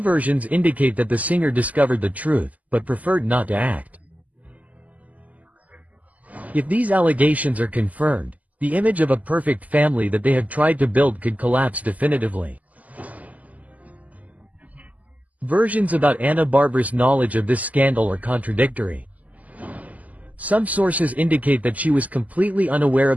versions indicate that the singer discovered the truth, but preferred not to act. If these allegations are confirmed, the image of a perfect family that they have tried to build could collapse definitively. Versions about Ana Bárbara's knowledge of this scandal are contradictory. Some sources indicate that she was completely unaware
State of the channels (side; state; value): left; late; 0.075 ms